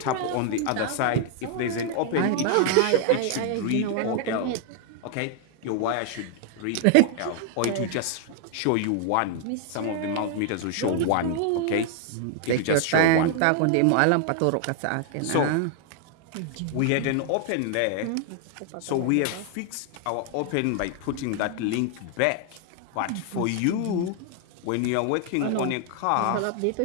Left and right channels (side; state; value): both; different; correlation 0.00